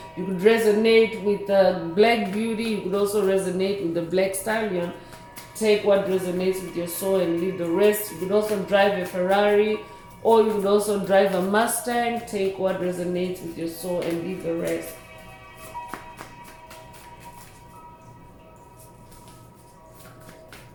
You could resonate with Black Beauty. You could also resonate with the Black Stallion. Take what resonates with your soul and leave the rest. You could also drive a Ferrari, or you could also drive a Mustang. Take what resonates with your soul and leave the rest.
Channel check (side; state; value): both; identical; correlation 1.00